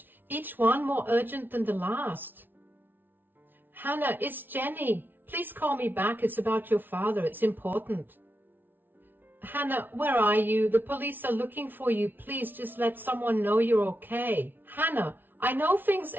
each one more urgent than the last. Hannah, it's Jenny. Please call me back. It's about your father. It's important. Hannah, where are you? The police are looking for you. Please just let someone know you're okay. Hannah, I know things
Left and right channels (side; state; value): left; late; 0.094 ms